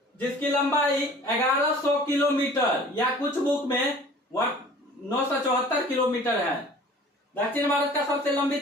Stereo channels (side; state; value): both; normal; correlation 0.47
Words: जिसकी लंबाई 1100 किलोमीटर या कुछ बुक में 974 किलोमीटर है। दक्षिण भारत का सबसे लंबी